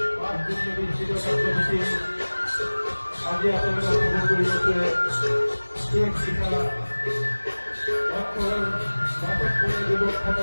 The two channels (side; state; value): both; inverted; correlation -1.00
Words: 5 দিনের নিশ্চিত কার্যসূচি আজি আপনাদের খবর করিয়েছে শেখ শিখা বর্তমান নাটক করে যুবক